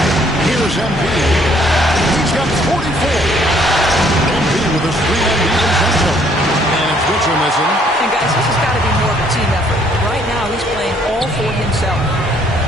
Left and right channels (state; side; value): normal; both; correlation 0.64